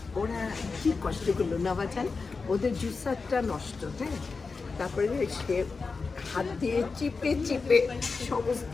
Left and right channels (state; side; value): quieter; right; 4.4 dB